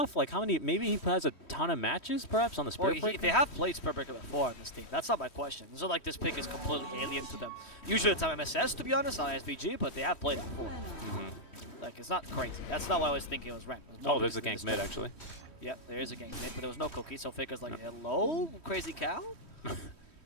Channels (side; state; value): right; late; 3.1 ms